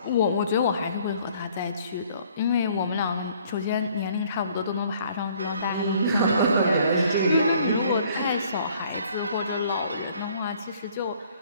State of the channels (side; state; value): both; inverted; correlation -0.59